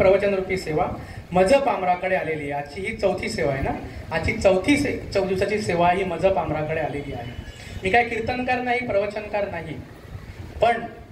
रूपी सेवा मजप आमराकडे आलेली आहे। आजची ही चौथी सेवा आहे ना, आजची चौथी दिवसाची सेवा ही मजप आमराकडे आलेली आहे। मी काय कीर्तनकार नाही, प्रवचनकार नाही, पण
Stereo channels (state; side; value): identical; both; correlation 1.00